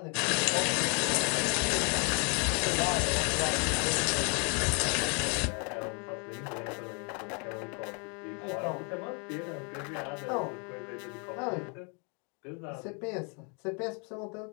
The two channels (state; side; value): quieter; right; 35.8 dB